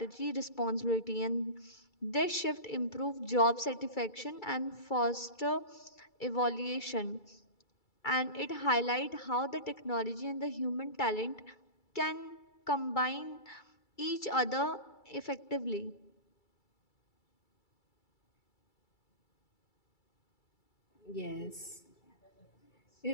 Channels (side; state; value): right; late; 2.3 ms